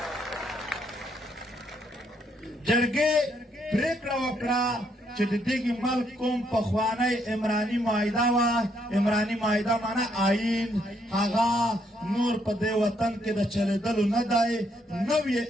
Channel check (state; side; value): normal; both; correlation 0.73